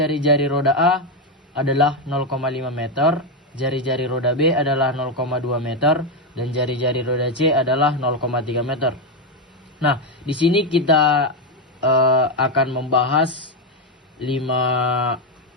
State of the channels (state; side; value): normal; both; correlation 0.06